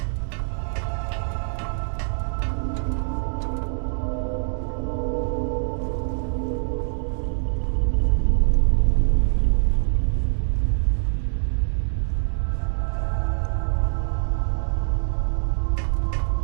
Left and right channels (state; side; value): silent; left; digital silence